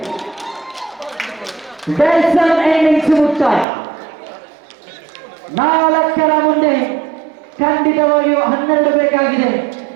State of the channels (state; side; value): drops out; left; at 3.7 s